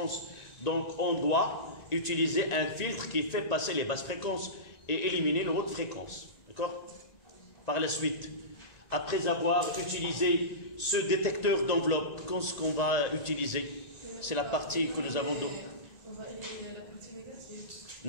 Donc, on doit utiliser un filtre qui fait passer les basses fréquences et éliminer les hautes fréquences. D'accord? Par la suite, après avoir utilisé ce détecteur d'enveloppe, qu'est-ce qu'on va utiliser? C'est la partie que nous avons. On va éliminer la partie négative.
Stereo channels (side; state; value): right; late; 1.9 ms